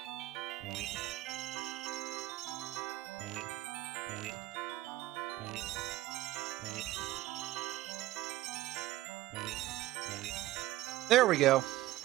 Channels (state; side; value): quieter; left; 16.4 dB